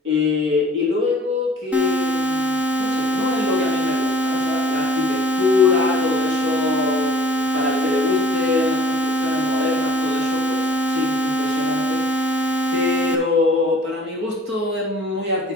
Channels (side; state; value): both; normal; correlation 0.52